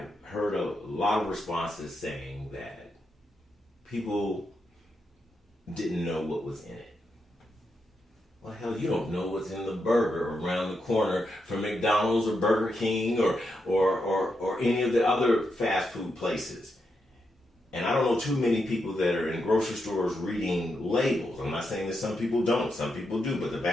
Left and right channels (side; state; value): both; normal; correlation 0.84